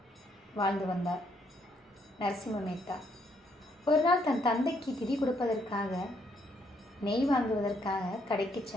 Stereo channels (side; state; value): both; normal; correlation 0.71